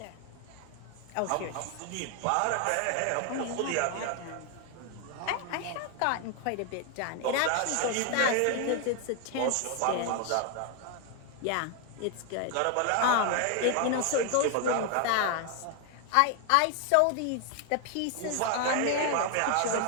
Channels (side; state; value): both; different; correlation 0.01